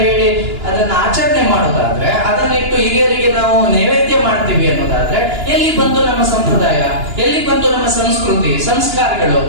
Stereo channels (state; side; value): late; left; 2.9 ms